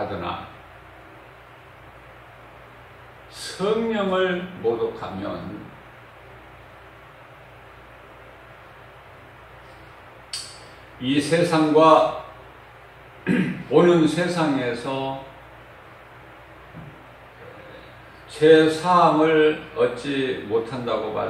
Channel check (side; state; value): both; identical; correlation 1.00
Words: 성령을 모독하면 이 세상과 오는 세상에서 죄사함을 얻지 못한다고